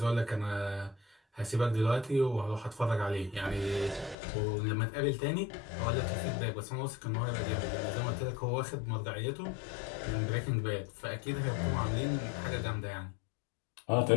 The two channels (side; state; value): right; drops out; at 4.2 s